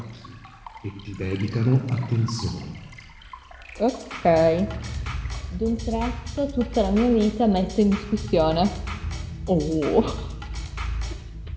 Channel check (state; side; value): identical; both; correlation 1.00